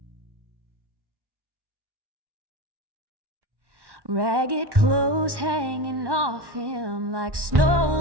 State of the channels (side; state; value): left; late; 1.1 ms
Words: Ragged clothes hanging off him like snow